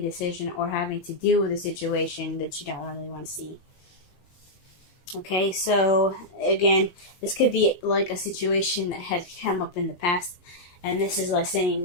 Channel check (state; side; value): late; right; 22 ms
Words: decision or having to deal with a situation that you don't really want to see. Okay, so again, this could be like a situation that had come up in the past. And this is like saying